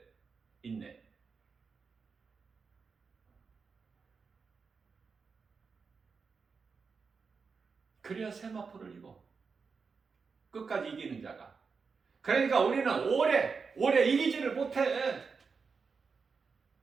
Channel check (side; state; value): left; quieter; 5.2 dB